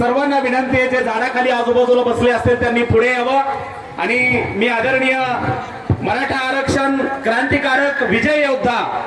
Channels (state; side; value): identical; both; correlation 1.00